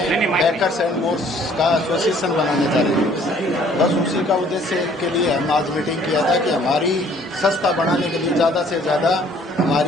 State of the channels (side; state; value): both; normal; correlation 0.58